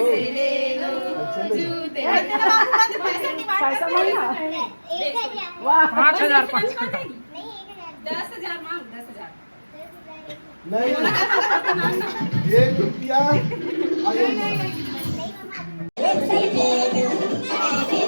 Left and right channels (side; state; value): both; inverted; correlation -1.00